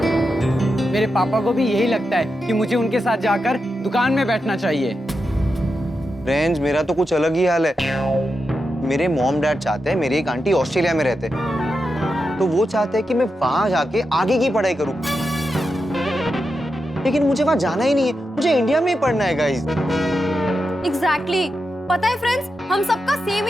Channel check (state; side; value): normal; both; correlation 0.88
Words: मेरे पापा को भी यही लगता है कि मुझे उनके साथ जाकर दुकान में बैठना चाहिए। फ्रेंड्स, मेरा तो कुछ अलग ही हाल है। मेरे मॉम डैड चाहते हैं, मेरी एक आंटी ऑस्ट्रेलिया में रहते हैं, तो वो चाहते हैं कि मैं वहां जाके आगे की पढ़ाई करूं। लेकिन मुझे वहां जाना ही नहीं है, मुझे इंडिया में ही पढ़ना है गाइस। एग्जैक्टली पता है फ्रेंड्स, हम सबका सेम